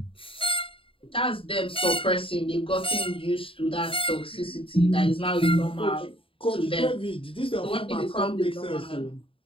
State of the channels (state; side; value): late; right; 0.26 ms